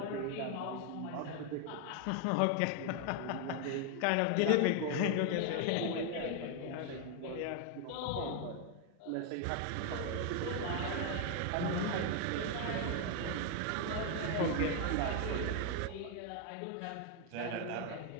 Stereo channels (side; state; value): both; different; correlation 0.01